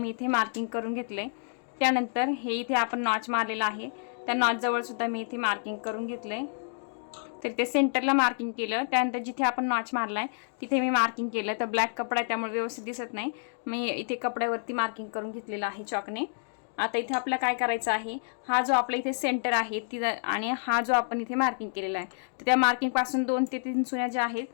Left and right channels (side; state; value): right; silent; digital silence